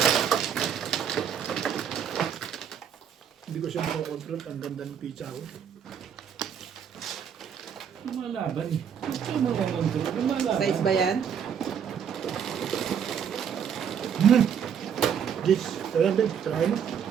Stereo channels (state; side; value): quieter; left; 8.0 dB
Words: Hindi ko siya makakontrol. Ang ganda ng pizza ko. Lumalaban eh. Ito mga control. Lumalaban. Size ba yan? Gis, ayan din. Try mo.